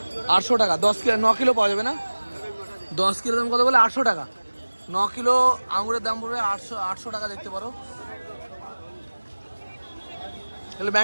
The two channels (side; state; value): both; inverted; correlation -1.00